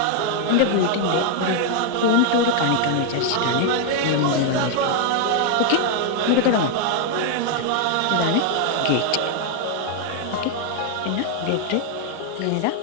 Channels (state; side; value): different; both; correlation 0.00